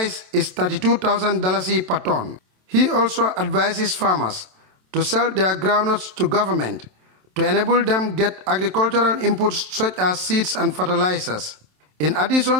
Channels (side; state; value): left; late; 27 ms